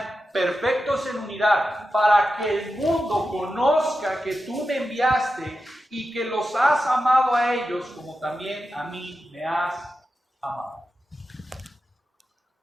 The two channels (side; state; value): both; normal; correlation 0.90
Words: perfectos en unidad, para que el mundo conozca que tú me enviaste y que los has amado a ellos como también a mí me has amado.